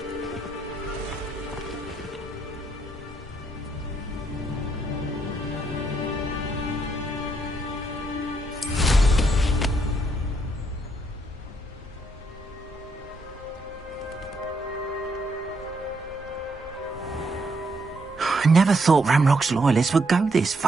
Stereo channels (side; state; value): both; normal; correlation 0.75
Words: I never thought Ramrock's loyalists would go this